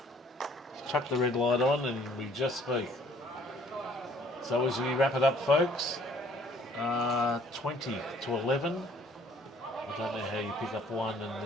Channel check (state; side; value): normal; both; correlation 0.59